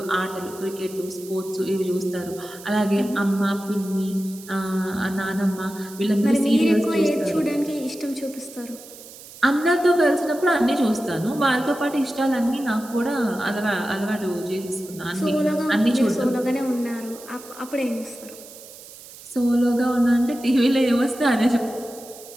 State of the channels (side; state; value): right; noise; hiss, 18 dB below the sound